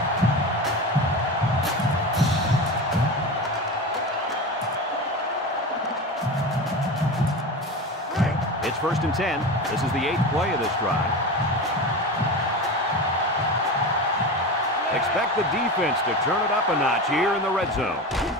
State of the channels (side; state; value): both; normal; correlation 0.26